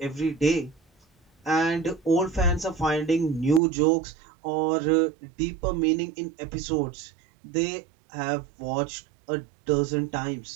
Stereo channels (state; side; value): drops out; left; at 3.6 s